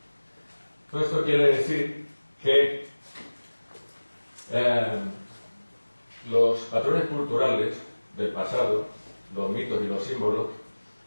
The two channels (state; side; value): inverted; both; correlation -1.00